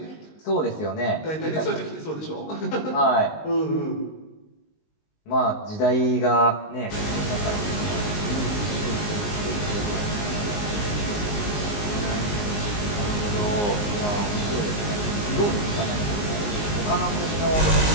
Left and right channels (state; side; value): late; right; 19 ms